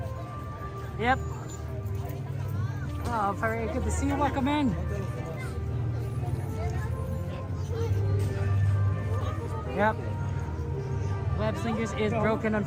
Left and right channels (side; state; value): both; identical; correlation 1.00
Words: Yep. Oh, very good to see you. Welcome in. Yep. Web Slingers is broken,